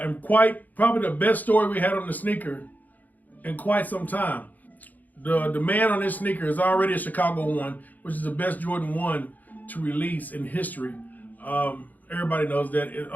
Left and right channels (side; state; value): right; late; 0.082 ms